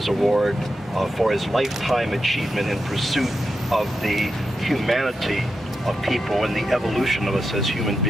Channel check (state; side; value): normal; both; correlation 0.88